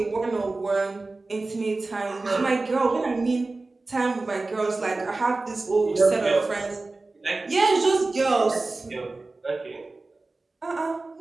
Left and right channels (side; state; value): left; quieter; 3.4 dB